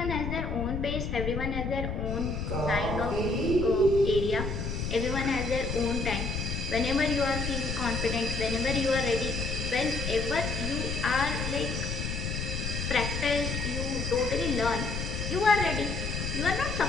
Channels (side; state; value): left; noise; rumble, 3 dB below the sound